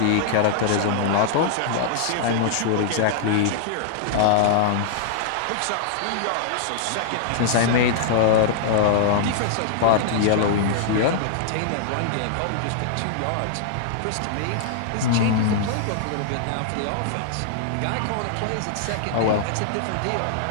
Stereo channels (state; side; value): different; both; correlation -0.01